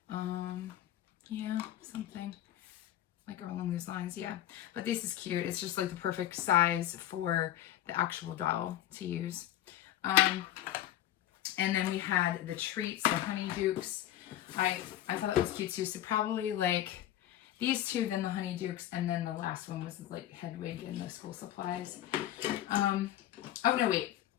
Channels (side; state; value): right; quieter; 12.8 dB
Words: Yeah, something like along those lines. Yeah, but this is cute. It's just like the perfect size for the actual doll to use. And then we had the treats, the Honeydukes. I thought it was cute too. So probably like these two, then the Honeydukes, and then the last one was like Hedwig and the school supplies. Oh no, wait,